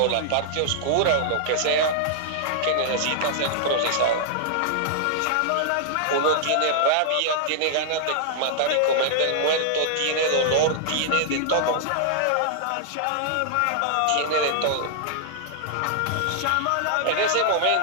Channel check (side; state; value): both; different; correlation -0.01